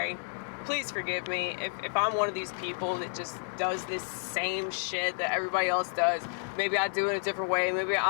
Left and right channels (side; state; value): right; silent; digital silence